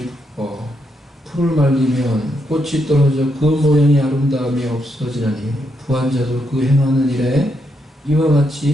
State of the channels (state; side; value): normal; both; correlation 0.80